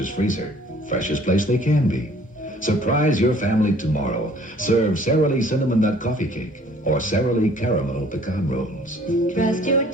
freezer. Freshest place they can be. Surprise your family tomorrow. Serve Sara Lee Cinnamon Nut Coffee Cake or Sara Lee Caramel Pecan Rolls. Trust your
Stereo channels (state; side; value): normal; both; correlation 0.55